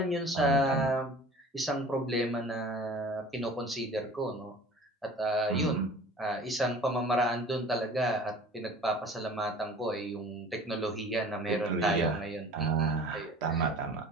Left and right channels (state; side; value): normal; both; correlation 0.45